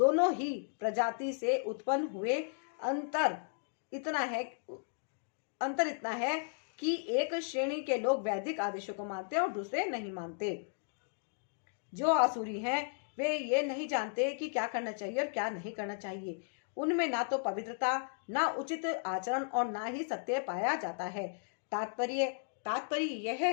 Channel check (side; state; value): right; silent; digital silence